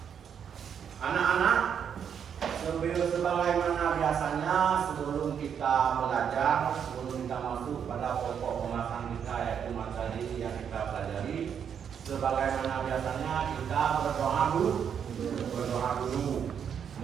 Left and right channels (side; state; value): left; quieter; 7.9 dB